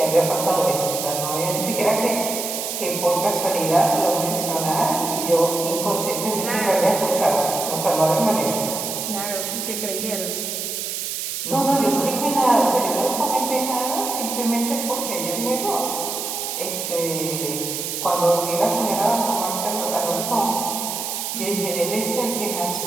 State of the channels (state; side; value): noise; right; hiss, 4 dB below the sound